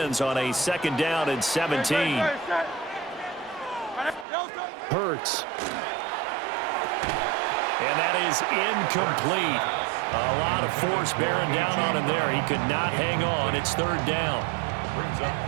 on a 2nd down and 17. Hurts. And that is incomplete. A lot of force bearing down on him there. He could not hang on. It's 3rd down.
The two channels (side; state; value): left; drops out; at 4.2 s